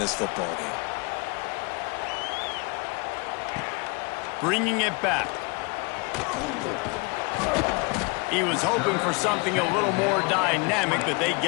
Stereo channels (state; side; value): quieter; right; 29.8 dB